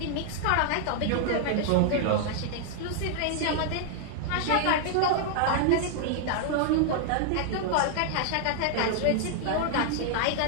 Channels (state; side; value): different; both; correlation -0.01